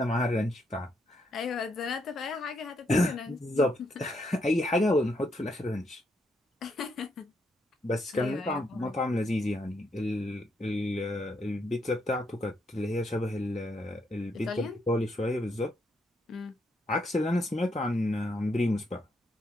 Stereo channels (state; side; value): normal; both; correlation 0.77